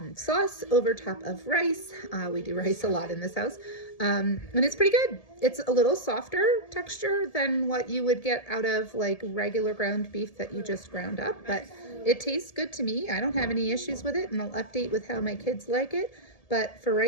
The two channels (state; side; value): late; right; 1.7 ms